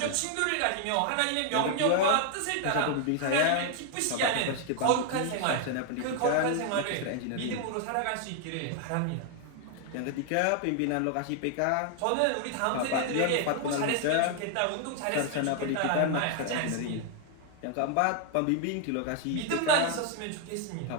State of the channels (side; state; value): both; different; correlation 0.00